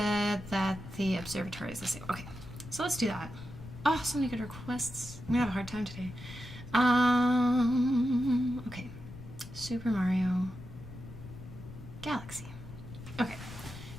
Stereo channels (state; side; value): noise; left; rumble, 14 dB below the sound